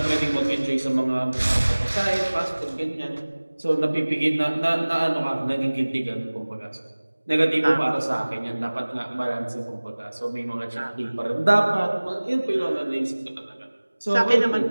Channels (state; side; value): inverted; both; correlation -1.00